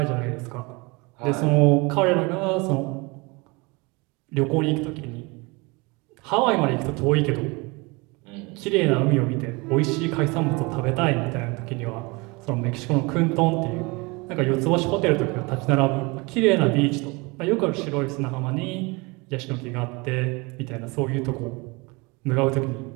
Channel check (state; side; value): quieter; left; 26.3 dB